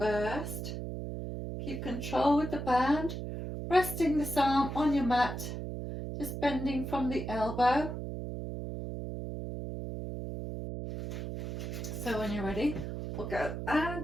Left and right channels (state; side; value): noise; right; hum, 5 dB below the sound